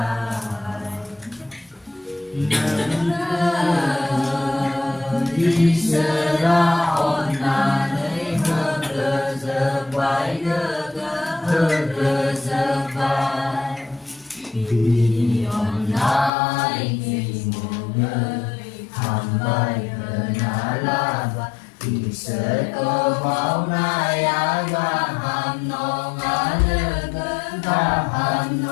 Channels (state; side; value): drops out; right; at 16.3 s